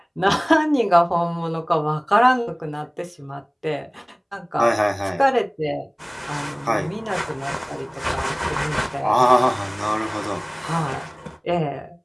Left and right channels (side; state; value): both; identical; correlation 1.00